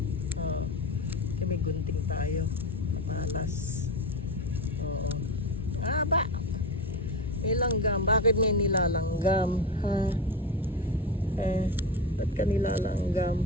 Oh, may gunting tayo. Malas. Oo. Haba. May langgam. Bakit may nilalanggam? Ha? Ba't ka nilalanggam?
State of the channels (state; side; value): normal; both; correlation 0.20